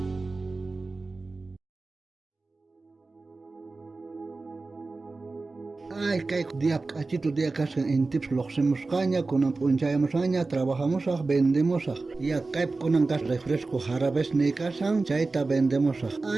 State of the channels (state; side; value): quieter; left; 3.6 dB